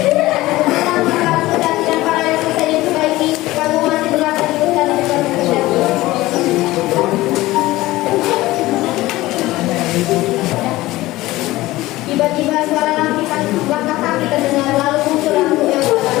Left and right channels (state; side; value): quieter; right; 18.0 dB